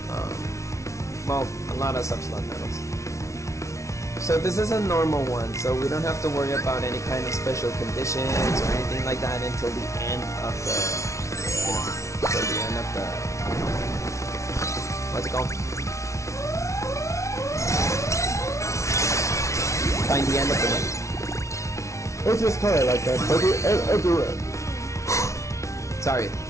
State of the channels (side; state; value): right; late; 0.14 ms